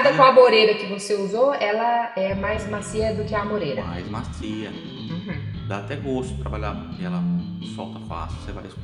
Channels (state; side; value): identical; both; correlation 1.00